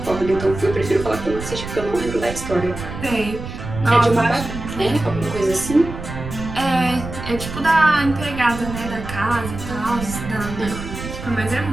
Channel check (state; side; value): noise; right; rumble, 9 dB below the sound